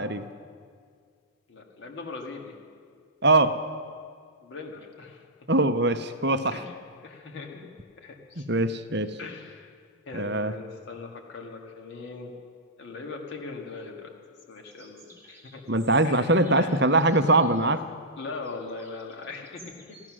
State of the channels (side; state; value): both; normal; correlation -0.14